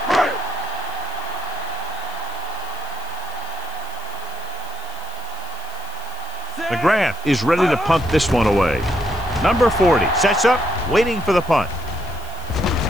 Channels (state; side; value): noise; right; hiss, 20 dB below the sound